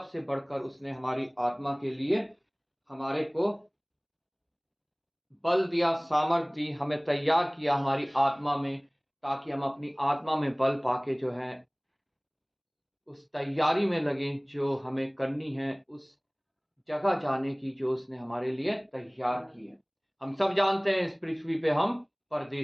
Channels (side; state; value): both; identical; correlation 1.00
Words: बढ़कर उसने हमारी आत्मा के लिए हमारे को बल दिया, सामर्थ दी, हमें तैयार किया हमारी आत्मा में, ताकि हम अपनी आत्मा में बल पाके जो है उस तैयारी में लगे जो हमें करनी है, उस जगह जाने की जो उसने हमारे लिए तैयार की है। हम सब जानते हैं इस पृथ्वी पे हम